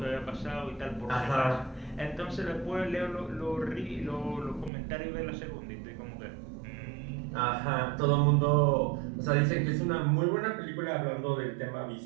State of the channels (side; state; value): left; drops out; at 4.7 s